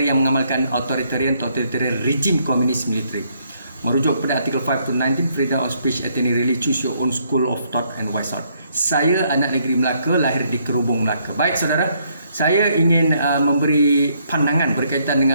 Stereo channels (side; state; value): both; inverted; correlation -0.70